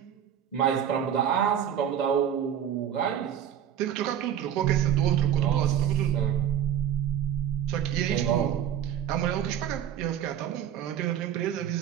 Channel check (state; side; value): quieter; left; 9.7 dB